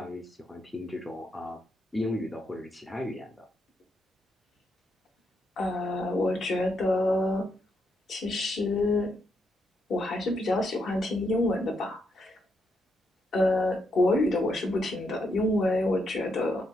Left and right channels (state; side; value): normal; both; correlation 0.80